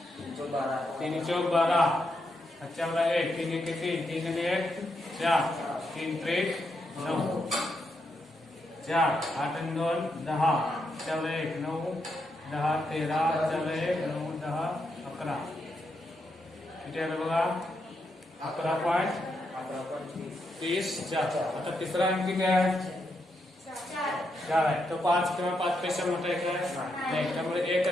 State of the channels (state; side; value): normal; both; correlation 0.82